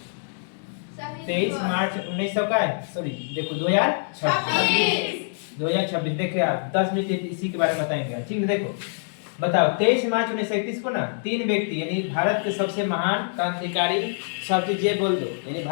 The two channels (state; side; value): silent; right; digital silence